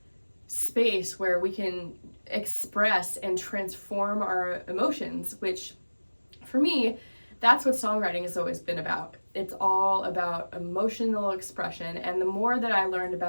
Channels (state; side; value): inverted; both; correlation -1.00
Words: space where we can express and transform our emotions, which for me, that's what songwriting has always been about. It's all about emotional expression, and the more that I learned